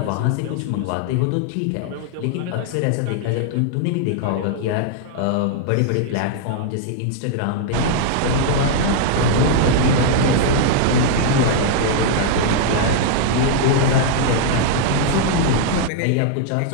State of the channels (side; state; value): both; different; correlation 0.00